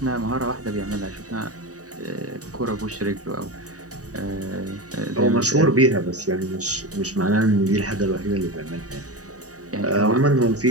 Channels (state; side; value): late; left; 0.66 ms